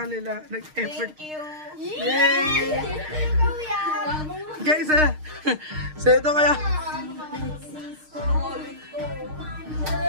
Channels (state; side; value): late; left; 6.5 ms